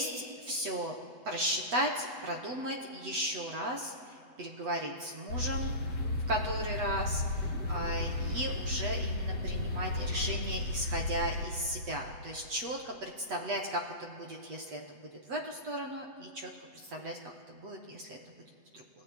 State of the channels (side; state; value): left; late; 8.1 ms